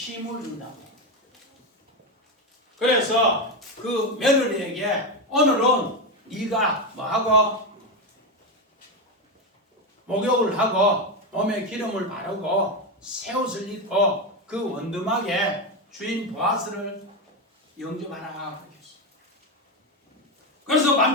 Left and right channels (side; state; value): both; normal; correlation 0.12